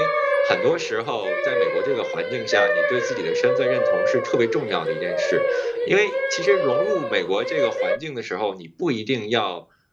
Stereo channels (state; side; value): identical; both; correlation 1.00